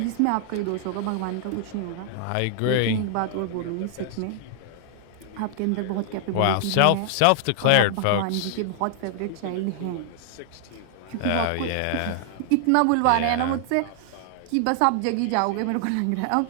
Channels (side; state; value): both; different; correlation 0.00